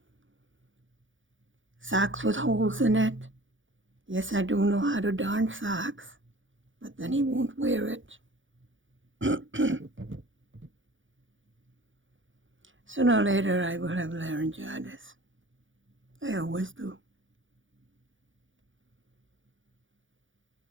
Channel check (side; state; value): left; late; 0.56 ms